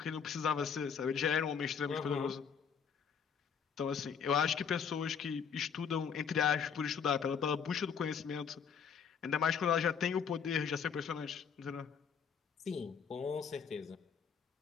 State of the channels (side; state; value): right; quieter; 6.9 dB